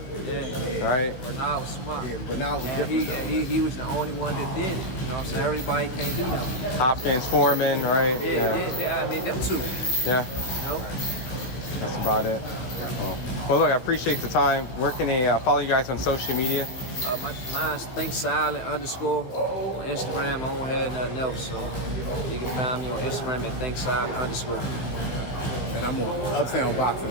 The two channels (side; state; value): right; late; 15 ms